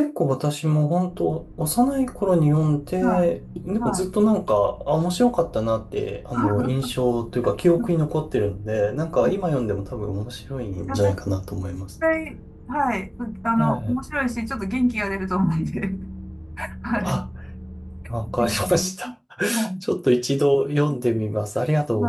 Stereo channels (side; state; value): both; identical; correlation 1.00